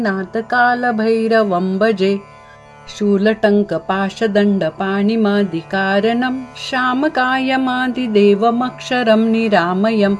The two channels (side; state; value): both; identical; correlation 1.00